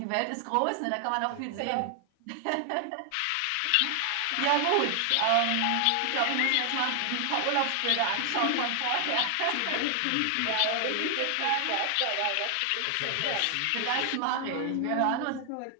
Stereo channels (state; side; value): different; both; correlation 0.00